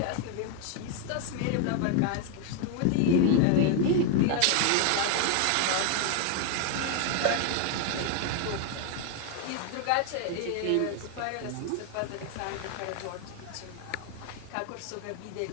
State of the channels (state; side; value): different; both; correlation 0.01